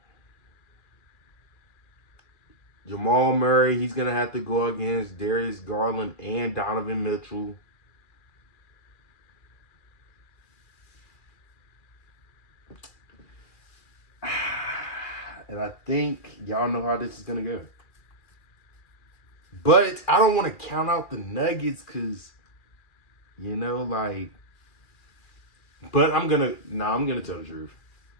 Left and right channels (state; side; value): late; right; 2.4 ms